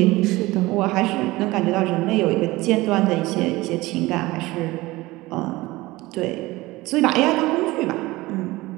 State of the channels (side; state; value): left; quieter; 19.9 dB